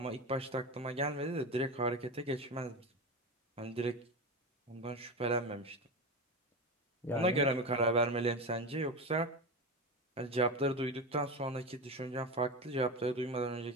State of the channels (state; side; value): normal; both; correlation 0.22